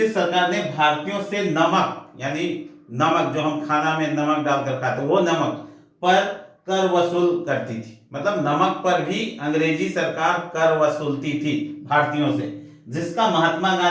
सरकार ने भारतीयों से नमक यानी नमक जो हम खाना में नमक डालकर खाते वो नमक पर कर वसूल करती थी। मतलब नमक पर भी अंग्रेजी सरकार कर वसूलती थी भारतीयों से, जिसका महात्मा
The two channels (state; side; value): identical; both; correlation 1.00